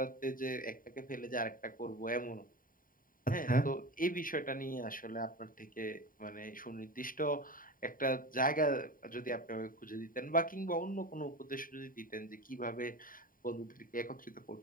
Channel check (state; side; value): late; right; 0.41 ms